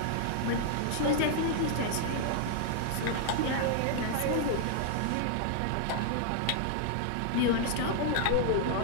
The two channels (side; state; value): both; different; correlation -0.01